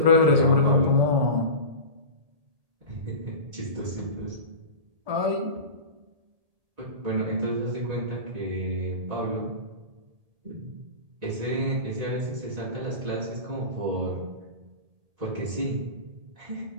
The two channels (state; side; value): late; left; 1.8 ms